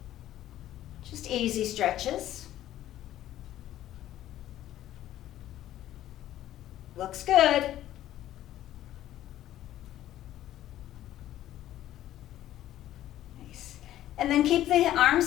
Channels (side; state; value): right; quieter; 13.2 dB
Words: Just easy stretches. Looks good. Nice. And then keep the